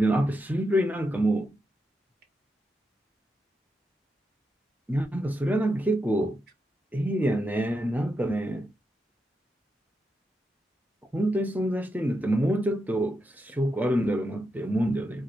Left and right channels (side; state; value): both; normal; correlation 0.85